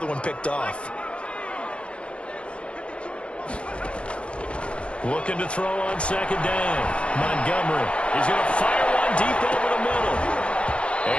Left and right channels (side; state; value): right; late; 0.059 ms